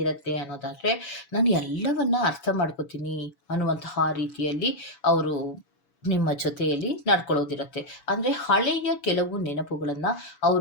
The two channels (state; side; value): late; right; 7.0 ms